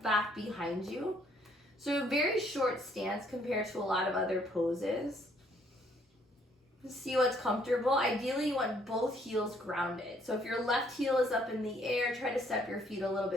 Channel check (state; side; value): normal; both; correlation 0.66